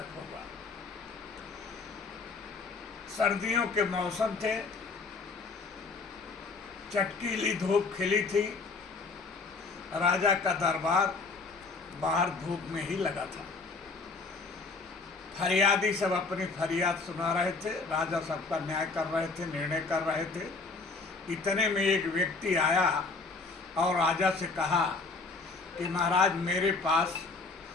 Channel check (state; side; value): quieter; right; 4.0 dB